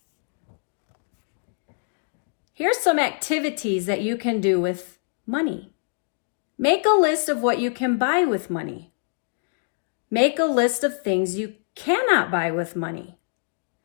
Here's some activities that you can do with money. Make a list of what you can buy with money. Make a list of things you cannot buy with money.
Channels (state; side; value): silent; right; digital silence